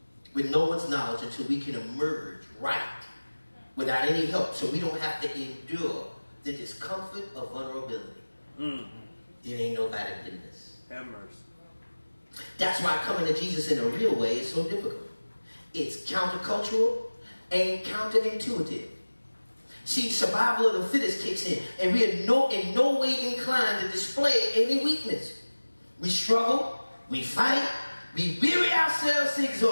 with no one's knowledge until we can emerge right without any help, so we don't have to endure the discomfort of vulnerability. It ain't nobody business. Have mercy. That's why coming to Jesus in a real way is so difficult. It's countercultural and counterintuitive. See, survival of the fittest kicks in, and we are in no way inclined to display any weakness. We struggle, we fight, we weary ourselves to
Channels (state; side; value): inverted; both; correlation -1.00